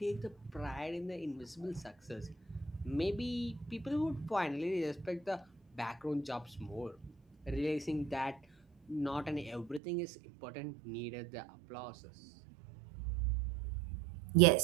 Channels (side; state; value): left; drops out; at 9.8 s